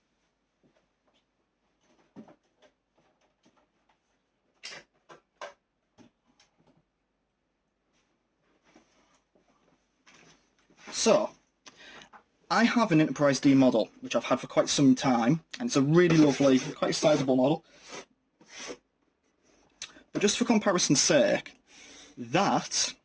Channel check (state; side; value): identical; both; correlation 1.00